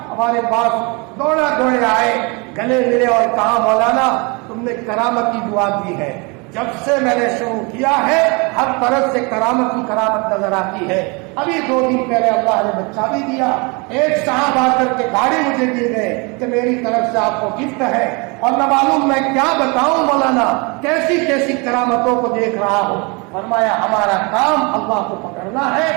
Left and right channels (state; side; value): quieter; left; 29.7 dB